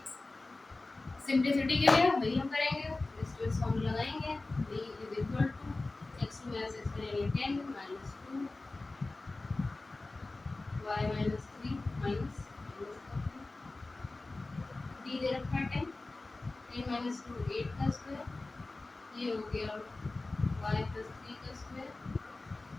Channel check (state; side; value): quieter; right; 3.2 dB